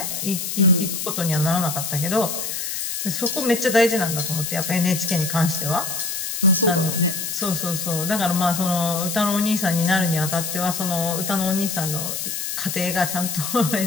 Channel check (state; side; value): noise; left; hiss, 4 dB below the sound